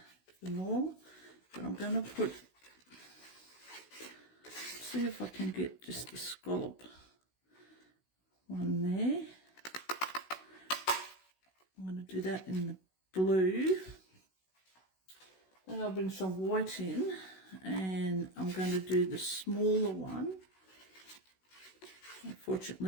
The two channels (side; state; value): right; late; 16 ms